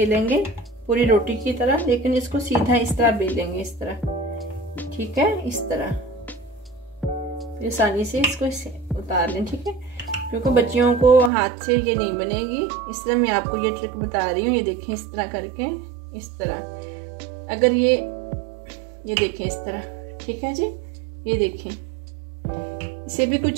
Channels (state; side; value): drops out; left; at 11.3 s